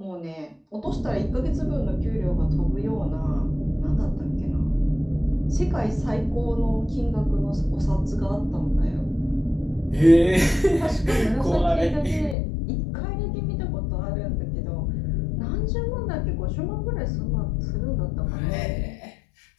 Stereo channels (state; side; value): drops out; right; at 12.4 s